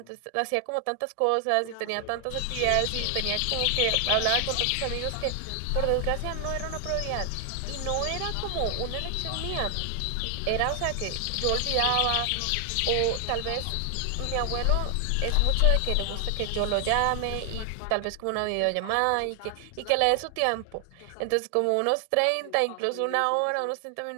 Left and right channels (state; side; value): different; both; correlation 0.00